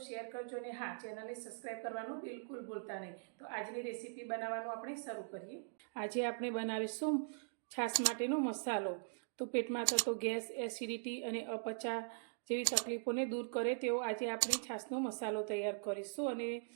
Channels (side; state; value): left; silent; digital silence